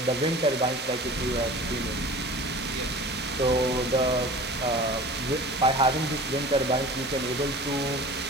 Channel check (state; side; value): normal; both; correlation 0.39